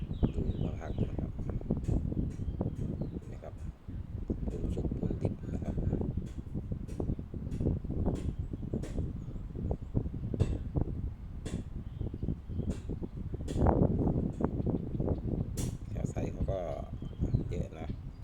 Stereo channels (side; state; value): both; identical; correlation 1.00